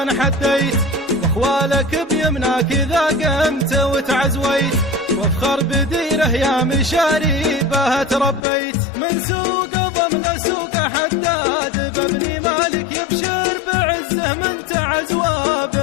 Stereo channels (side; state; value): right; drops out; at 8.4 s